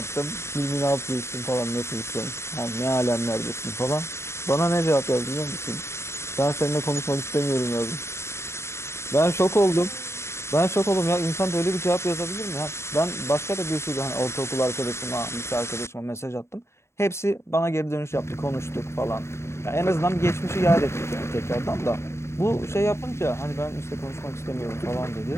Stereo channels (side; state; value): right; late; 0.13 ms